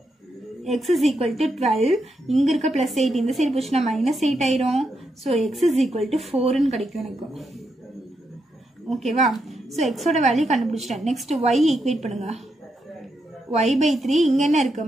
x is equal to 12. இங்கே இருக்க plus 8 இந்த சைடு போச்சுன்னா minus 8 ஆயிரும். So x is equal to 4ன்னு கிடைக்கும் எனக்கு. ஓகேவா? ஸோ எக்ஸோட வேல்யூ கண்டுபிடிச்சிட்டேன். நெக்ஸ்ட் y ஈக்குவேட் பண்ணுங்க. y/3 இங்கே என்ன இருக்குது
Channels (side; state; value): both; normal; correlation 0.82